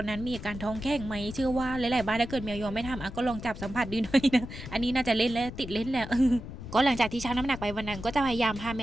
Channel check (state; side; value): noise; left; rumble, 11 dB below the sound